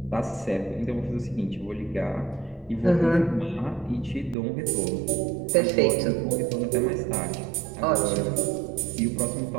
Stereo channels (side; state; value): left; drops out; at 4.4 s